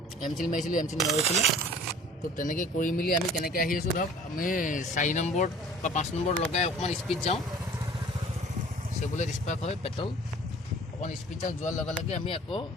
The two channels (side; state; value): both; normal; correlation 0.48